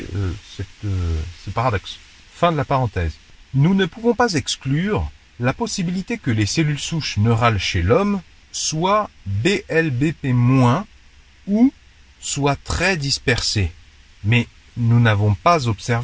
ce paradoxe. Fin de la parenthèse. Nous ne pouvons pas exclure la possibilité que les cellules souches neurales chez l'homme soient BLBP- ou soient très dispersées, mais nous n'avons pas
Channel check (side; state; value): both; identical; correlation 1.00